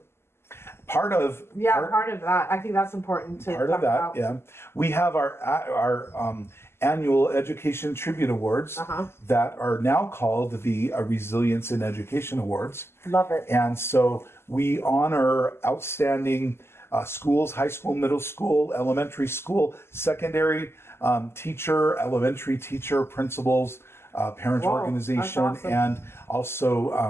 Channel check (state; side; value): late; right; 0.12 ms